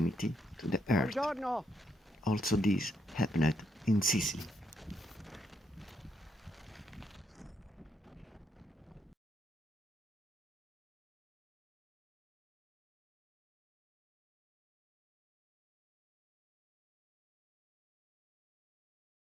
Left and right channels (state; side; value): normal; both; correlation 0.75